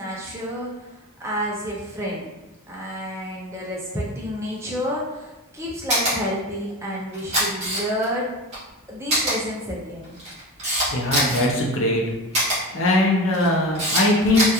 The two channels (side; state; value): both; normal; correlation 0.28